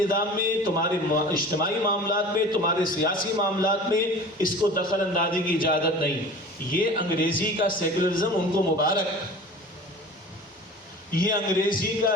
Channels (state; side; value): normal; both; correlation 0.39